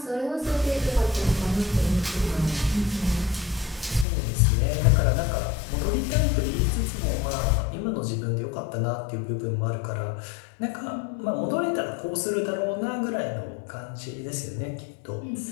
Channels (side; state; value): right; drops out; at 4.0 s